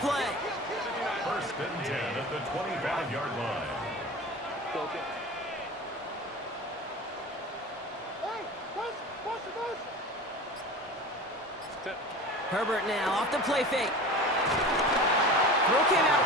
play. 1st and 10 at the 25-yard line. Herbert now off the play fake. Throw came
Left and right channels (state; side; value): normal; both; correlation 0.34